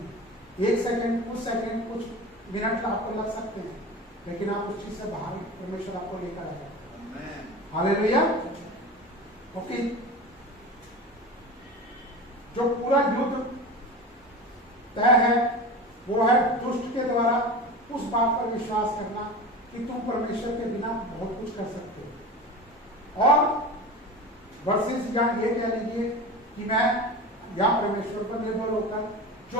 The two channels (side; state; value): both; normal; correlation 0.30